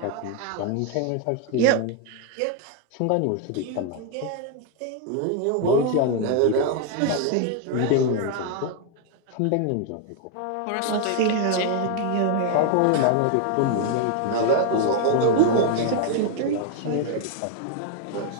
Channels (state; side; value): different; both; correlation 0.00